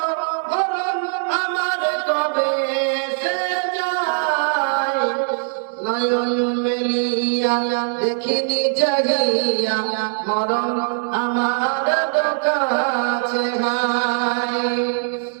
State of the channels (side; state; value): left; silent; digital silence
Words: মরণ আমার কবে এসে যায়। নয়ন মেলিয়া দেখিনি জাগিয়া, মরণ আমার কাছে নাই।